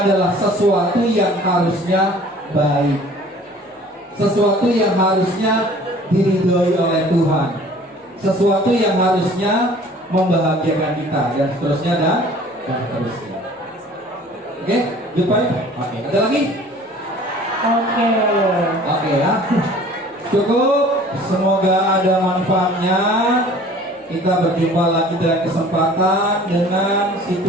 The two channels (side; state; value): both; normal; correlation 0.49